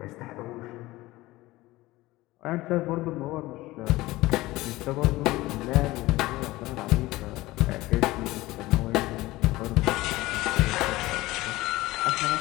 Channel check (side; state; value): right; quieter; 18.8 dB